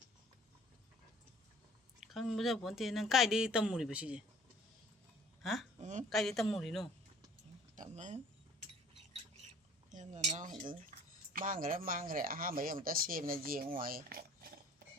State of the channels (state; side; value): normal; both; correlation 0.52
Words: 강 뭐자 본테는 cái đi tâm mùi bữa gì? Hả? Cái đi tâm mùi nó. Tắm em là nó mang cái đấy ha mấy ông ta xem là gì ngoài.